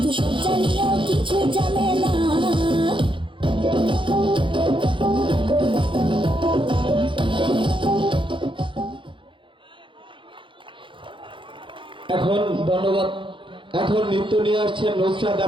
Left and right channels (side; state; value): left; late; 0.24 ms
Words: সজ্জা নিয়েও কিছু জানে না। এখন ধন্যবাদ। এখন নৃত্য নিয়ে আসছেন নুসরাত